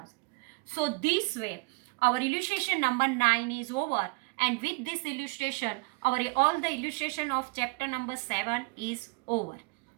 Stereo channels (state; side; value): quieter; left; 27.3 dB